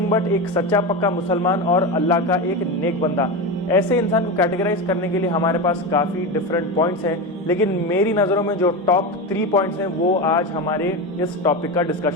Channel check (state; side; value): normal; both; correlation 0.19